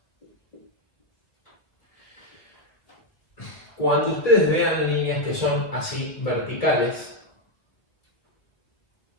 Cuando ustedes vean líneas que son así verticales,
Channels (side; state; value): right; late; 1.9 ms